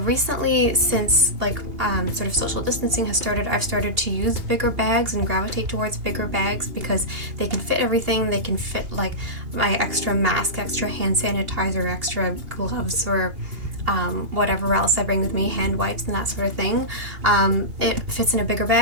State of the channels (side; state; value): left; late; 2.8 ms